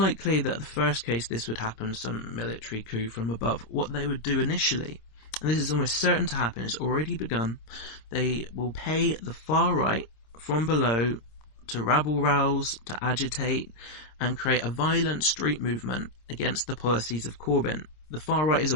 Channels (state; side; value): late; right; 26 ms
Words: that the first case this would happen, some military coup from above. What they would do initially and this is almost certain to happen, it's already begun, they will pay the far right from below to rabble-rouse, to agitate, and create a violent street movement against the policies of Corbyn. The far right is